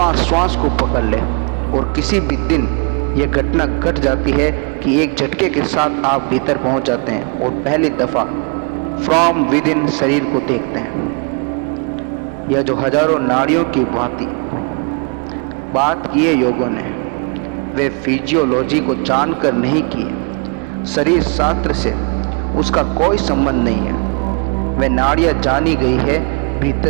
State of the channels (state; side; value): quieter; left; 34.9 dB